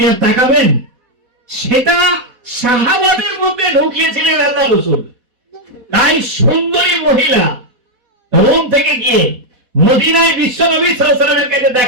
আর তাকাবেন? সেটা সাহাবাদের মধ্যে ঢুকিয়েছিলেন আল্লাহ রাসূল। তাই সুন্দরী মহিলা রোম থেকে গিয়ে মদিনায় বিশ্বনবী সাল্লাল্লাহু আলাইহি ওয়াসাল্লামের কাছে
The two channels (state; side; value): late; left; 4.1 ms